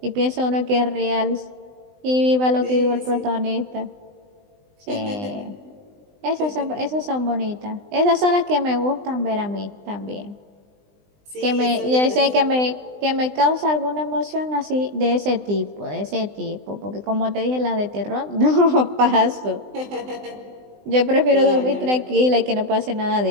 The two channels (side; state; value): left; late; 20 ms